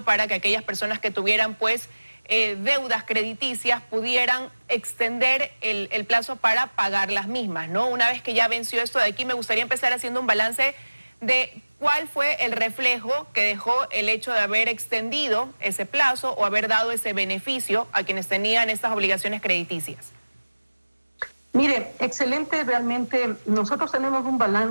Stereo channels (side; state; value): both; inverted; correlation -1.00